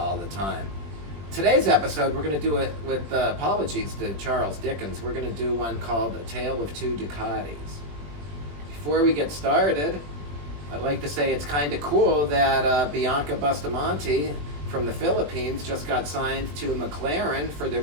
the time. Today's episode, we're going to do it with apologies to Charles Dickens. We're going to do one called A Tale of Two Ducatis. Before we get started, I'd like to say it's kind of cool that Bianca Bustamante from the Philippines just got signed to McLaren for their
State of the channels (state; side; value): late; left; 20 ms